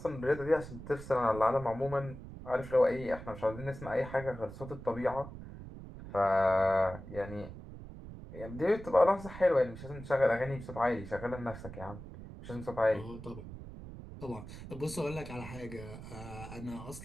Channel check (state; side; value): noise; right; rumble, 12 dB below the sound